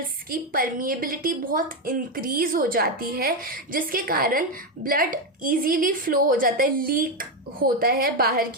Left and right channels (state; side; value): normal; both; correlation 0.08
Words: की परमिएबिलिटी बहुत इंक्रीज हो जाती है, जिसके कारण ब्लड इजीली फ्लो हो जाता है, लीक होता है बाहर